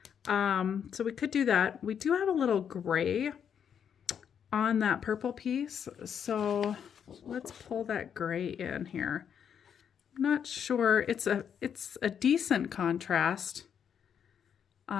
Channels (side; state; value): right; quieter; 8.0 dB